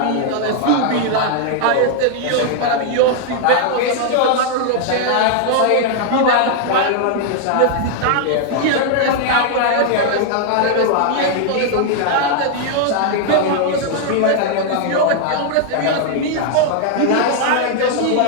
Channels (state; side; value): different; both; correlation 0.00